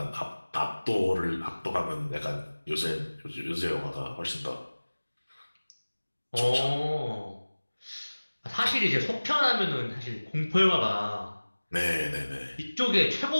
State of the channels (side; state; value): both; inverted; correlation -1.00